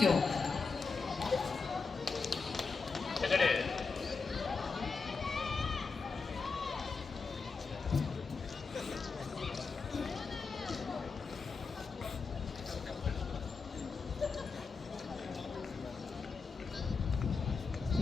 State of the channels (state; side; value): quieter; right; 4.7 dB